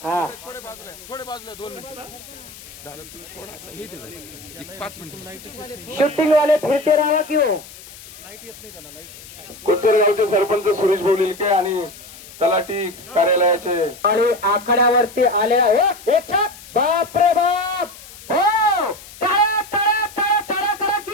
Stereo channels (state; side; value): noise; left; hiss, 18 dB below the sound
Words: हा थोडे बाजूला 2 मिनिट झालं तुम्ही थोडासा हे दे 5 मिनिट शूटिंग वाले फिरते राहा की हो. कोचर गावचे सरपंच सुरेश बोलिलके आणि तलाठी कार्यालयाचे आणि आखाड्यावरती आलेला हो एक छाक. बाप रे बाप. हो टाळ्या टाळ्या टाळ्या टाळ्या करा